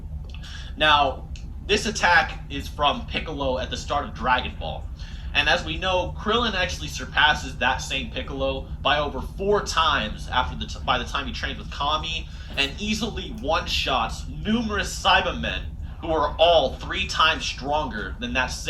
Now, this attack is from Piccolo at the start of Dragon Ball. And as we know, Krillin actually surpasses that same Piccolo by over 4 times by the time he trains with Kami, and easily one-shots numerous Cybermen who are all 3 times stronger than that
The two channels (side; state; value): both; identical; correlation 1.00